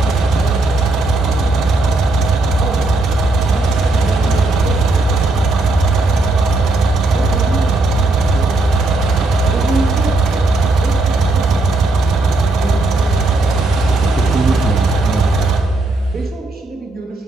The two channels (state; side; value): quieter; left; 3.0 dB